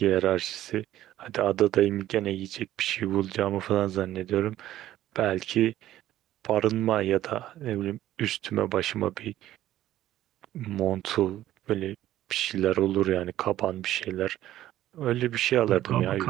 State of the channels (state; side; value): quieter; left; 13.5 dB